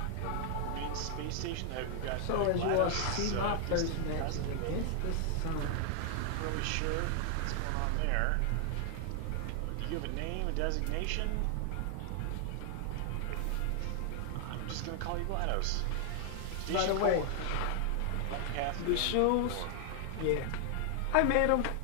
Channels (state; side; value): different; both; correlation 0.00